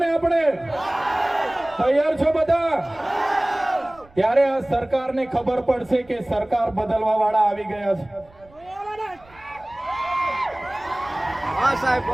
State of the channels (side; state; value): right; noise; rumble, 27 dB below the sound